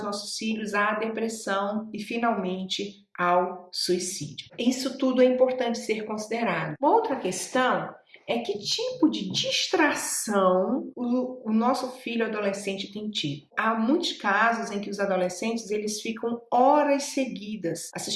nossos filhos à depressão e finalmente ao suicídio. Isso tudo é importante ser considerado. Uma outra questão é que tipo de distração o nosso filho adolescente tem tido. Há muitos casos em que os adolescentes eles ficam horas seguidas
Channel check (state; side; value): identical; both; correlation 1.00